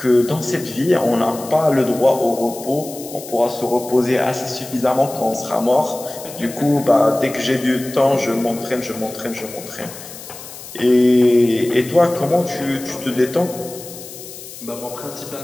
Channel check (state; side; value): noise; left; hiss, 14 dB below the sound